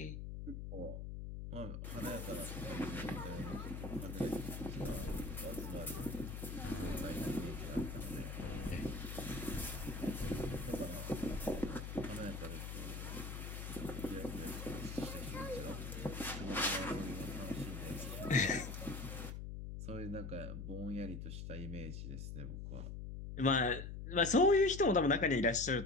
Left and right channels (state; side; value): noise; left; hum, 6 dB below the sound